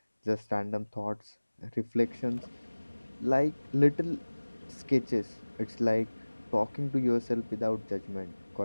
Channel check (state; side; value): inverted; both; correlation -1.00